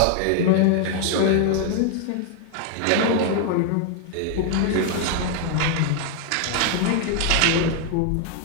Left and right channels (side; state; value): both; different; correlation 0.00